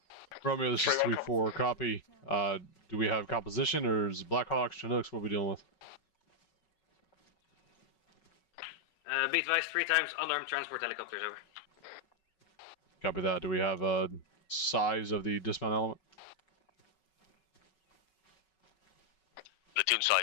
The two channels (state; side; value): late; right; 5.4 ms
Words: Romeo, this is 3-4. Copy. Do we have composition, or is it Blackhawks, Chinooks? What are we dealing with? Be advised, 3 times unarmed transport helicopters, over. Copy that. Do we have a size of the dismount element? Platoon